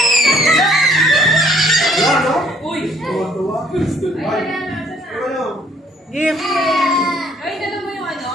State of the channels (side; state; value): both; normal; correlation 0.62